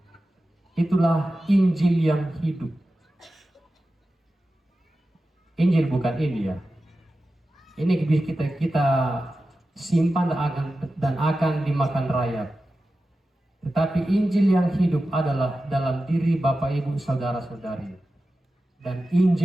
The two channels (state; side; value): normal; both; correlation 0.93